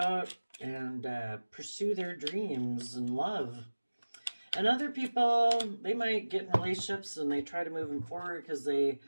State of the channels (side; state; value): both; inverted; correlation -1.00